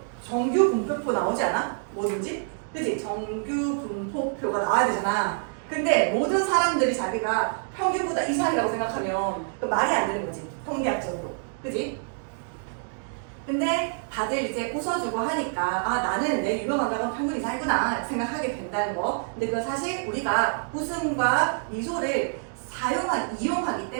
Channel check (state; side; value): silent; left; digital silence